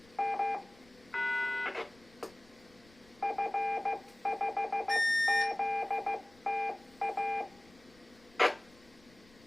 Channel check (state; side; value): noise; left; rumble, 27 dB below the sound